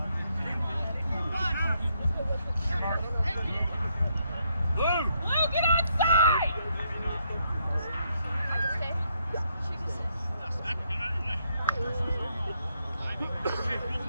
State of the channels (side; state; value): both; inverted; correlation -0.76